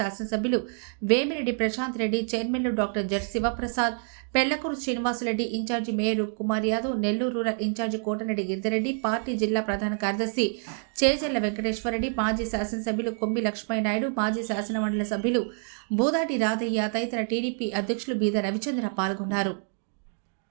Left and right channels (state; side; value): silent; left; 55 dB below the other